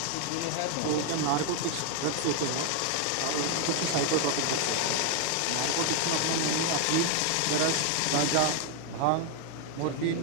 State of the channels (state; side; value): different; both; correlation 0.00